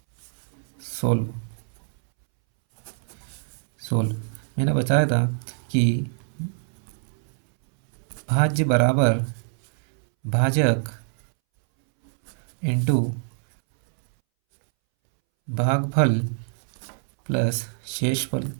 सोल्व सोल्व मैंने बताया था कि भाज्य बराबर भाजक इंटू भागफल प्लस शेषफल,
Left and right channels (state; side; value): silent; left; 62 dB below the other